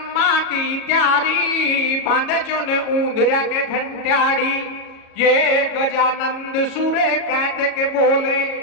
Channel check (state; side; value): late; right; 37 ms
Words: की त्यारी। बांधे चो ने ऊंदरा के घंटियाड़ी, ये गजानंद सुरे कार्तिक बोले।